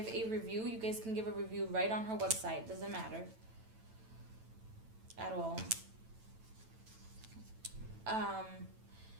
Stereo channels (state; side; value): late; left; 9.0 ms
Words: a review, you guys can give a review right on her website. Doesn't matter at all.